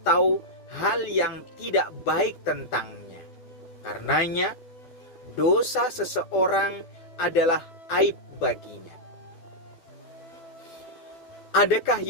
hal yang tidak baik tentangnya. Karenanya, dosa seseorang adalah aib baginya. Adakah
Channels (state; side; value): late; right; 12 ms